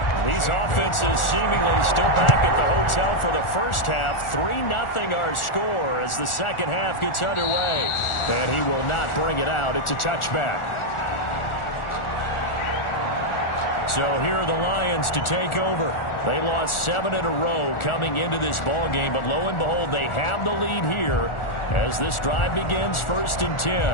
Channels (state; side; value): late; right; 1.4 ms